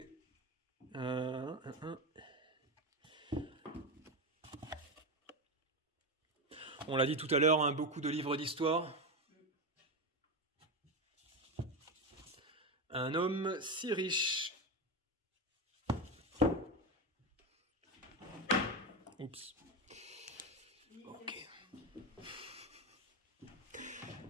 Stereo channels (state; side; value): normal; both; correlation 0.14